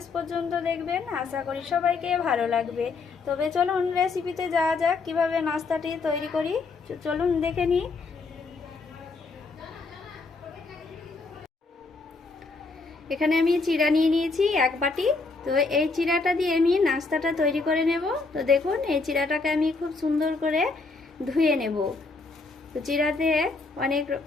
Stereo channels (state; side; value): quieter; right; 3.9 dB